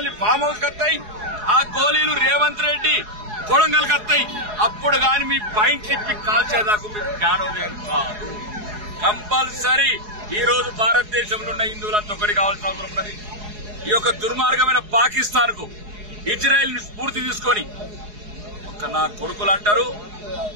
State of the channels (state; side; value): late; left; 4.8 ms